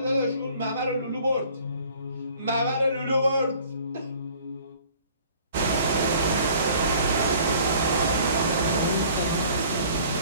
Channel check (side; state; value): both; inverted; correlation -0.52